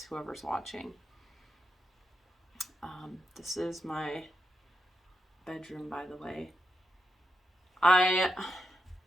whoever's watching. This is my bedroom, by the way.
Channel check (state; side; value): normal; both; correlation 0.84